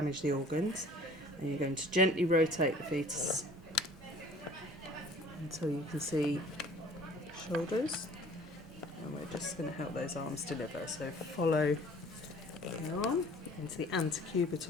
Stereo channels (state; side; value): normal; both; correlation 0.50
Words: the organs. And you're going to gently rotate the fetus until you can see shoulders. And we're just going to help those arms deliver. So follow the arm into the